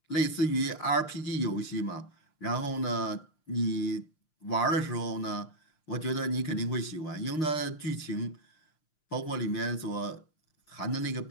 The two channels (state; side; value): late; right; 6.5 ms